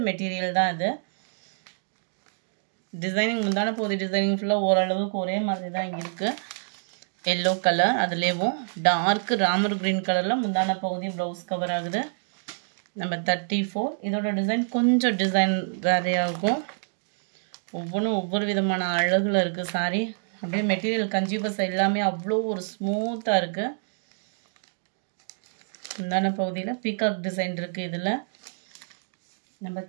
மெட்டீரியல் தான் இது. டிசைனிங் முந்தான பகுதி டிசைனிங் ஃபுல்லாக ஓரளவுக்கு ஒரே மாதிரி தான் இங்கே இருக்குது. எல்லோ கலர் அதுலேயும் டார்க் ராமர் க்ரீன் கலரில் முந்தான பகுதி ப்ளவுஸ் கவர் ஆகுது. நம்பர் 34 இதோட டிசைன் கொஞ்சம் டிசைன் வேறையாகும். ஒவ்வொன்றும் ஒவ்வொரு விதமான அழகில் இருக்குது சாரி. அப்படியே மெட்டீரியல் கஞ்சி பசை எல்லாமே அவ்வளோ ஒரு ஸ்மூத்தாக இருக்குது. முந்தான பகுதியில் பீகாக் டிசைன் இருக்குது இதில். நம்பர்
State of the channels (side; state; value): left; silent; digital silence